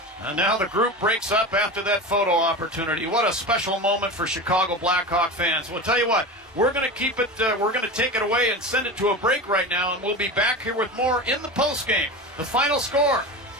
And now the group breaks up after that photo opportunity. What a special moment for Chicago Blackhawk fans. We'll tell you what, we're going to keep it, we're going to take it away and send it to a break right now, and we'll be back here with more in the postgame. The final score,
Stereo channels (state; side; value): normal; both; correlation 0.27